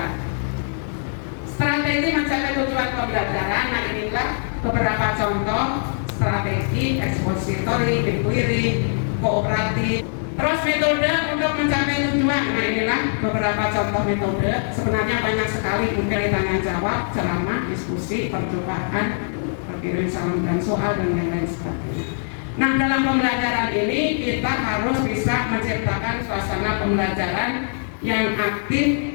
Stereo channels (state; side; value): silent; right; digital silence